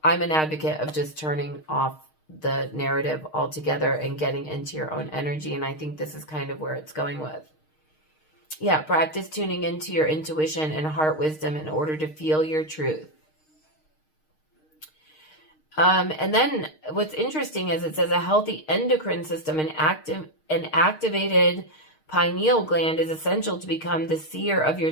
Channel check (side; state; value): right; late; 6.5 ms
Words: I'm an advocate of just turning off the narrative altogether and getting into your own energy. And I think this is kind of where it's going with. Yeah, practice tuning into your intuition and heart wisdom in order to feel your truth. And then what's interesting is it says a healthy endocrine system and activated pineal gland is essential to become the seer of your